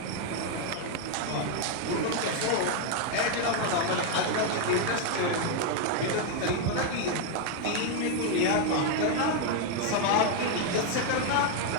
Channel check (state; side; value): different; both; correlation 0.01